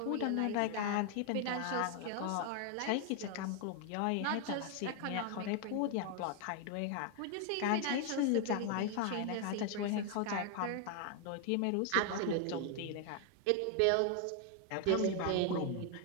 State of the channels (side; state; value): both; different; correlation 0.00